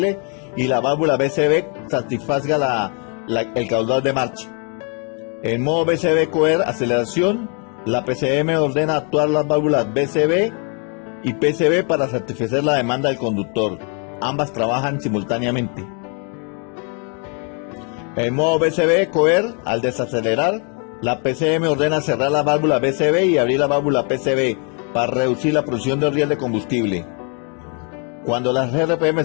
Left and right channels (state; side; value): quieter; right; 38.0 dB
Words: y la válvula BCB satisfaga el caudal de marcha. En modo BCB Coer aceleración, la PCM ordena actuar las válvulas BCB y PCB para satisfacer la demanda del conductor. Ambas trabajan simultáneamente. En modo BCB Coer, al desacelerar, la PCM ordena cerrar la válvula BCB y abrir la válvula PCB para reducir la producción de riel de combustible. Cuando las RPM